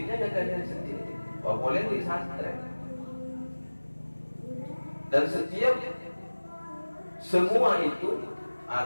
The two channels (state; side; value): inverted; both; correlation -1.00